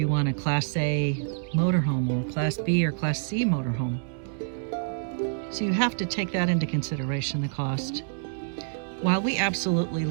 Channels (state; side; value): silent; left; digital silence